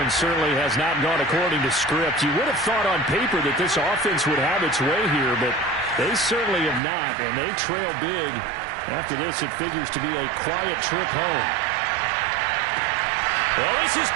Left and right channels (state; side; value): drops out; left; at 6.8 s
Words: certainly has not gone according to script. You would have thought on paper that this offense would have its way here, but they certainly have not, and they trail big. After this, it figures to be a quiet trip home. Well, this is